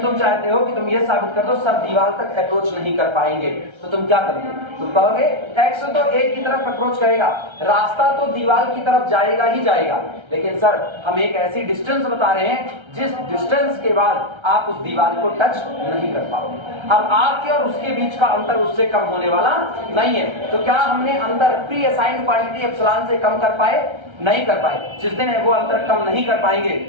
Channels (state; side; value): late; left; 1.3 ms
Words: तुम चाहते हो कि तुम ये साबित कर दो सर दीवार तक अप्रोच नहीं कर पाएंगे, तो तुम क्या करोगे? तुम कहोगे एक्स तो a की तरफ अप्रोच करेगा, रास्ता तो दीवार की तरफ जाएगा ही जाएगा, लेकिन सर हम एक ऐसी डिस्टेंस बता रहे हैं जिस डिस्टेंस के बाद आप उस दीवार को टच नहीं कर पाओगे। अब आपके और उसके बीच का अंतर उससे कम होने वाला नहीं है, तो क्या हमने अंतर प्री असाइंड क्वांटिटी एप्सिलॉन से कम कर पाए? नहीं कर पाए। जिस दिन वो अंतर कम नहीं कर पाएंगे